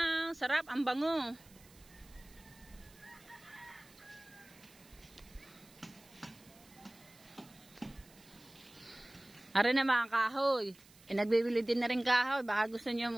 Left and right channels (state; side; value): noise; right; hiss, 25 dB below the sound